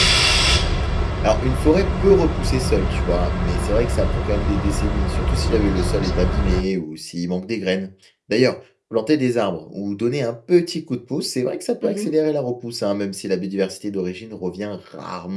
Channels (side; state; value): both; identical; correlation 1.00